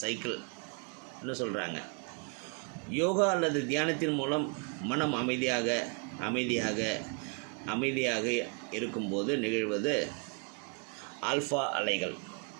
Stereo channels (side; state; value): left; quieter; 35.5 dB